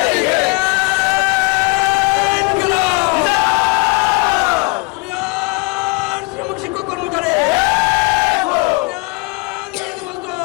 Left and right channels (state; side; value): quieter; right; 28.2 dB